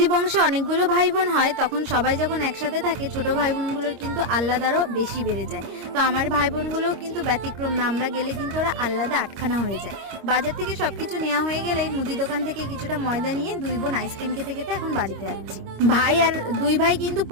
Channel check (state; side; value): late; left; 25 ms